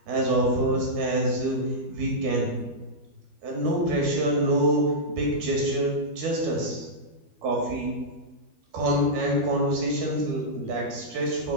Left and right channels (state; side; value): late; left; 12 ms